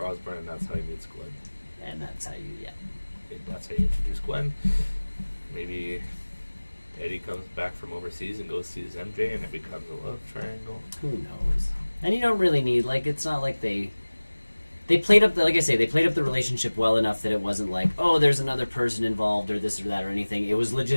Osborn, and that's how he meets Gwen. And that's how you, That's how you introduce Gwen. Maybe Eddie comes back from overseas and goes sees MJ, and it becomes a love triangle. Who knows? And you don't really need, it's not like they played up, like I say, they played up the relationship well enough that it wasn't like, oh, there's another person involved or this or that or anything. It was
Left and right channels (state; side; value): inverted; both; correlation -1.00